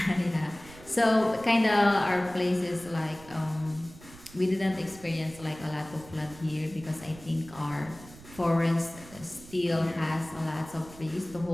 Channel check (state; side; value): noise; right; rumble, 19 dB below the sound